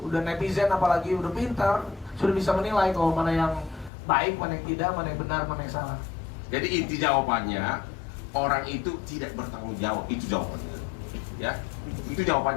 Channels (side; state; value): right; drops out; at 3.9 s